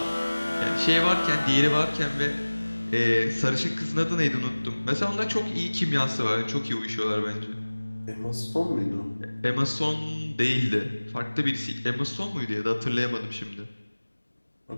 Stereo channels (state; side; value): inverted; both; correlation -1.00